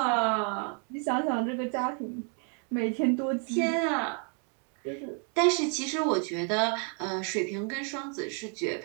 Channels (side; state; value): left; quieter; 39.3 dB